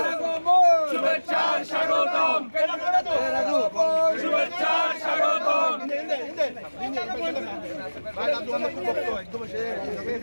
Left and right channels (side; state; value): both; inverted; correlation -1.00